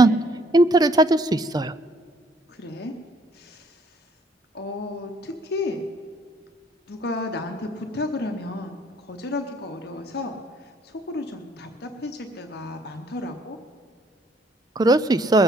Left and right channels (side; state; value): both; normal; correlation 0.64